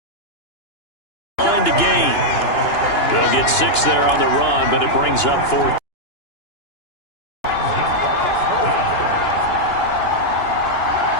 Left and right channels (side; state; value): right; late; 2.9 ms